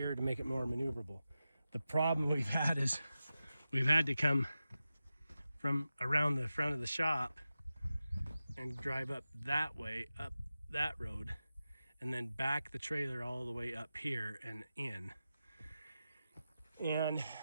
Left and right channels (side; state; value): both; inverted; correlation -0.93